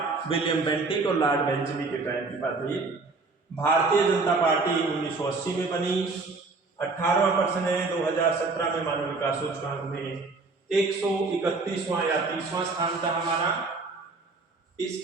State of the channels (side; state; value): left; quieter; 3.8 dB